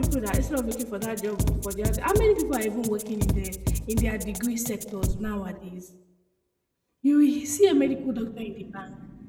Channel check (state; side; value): identical; both; correlation 1.00